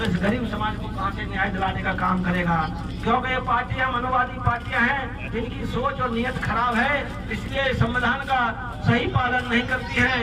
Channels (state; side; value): identical; both; correlation 1.00